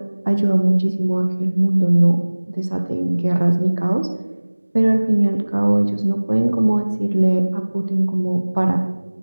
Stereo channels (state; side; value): inverted; both; correlation -1.00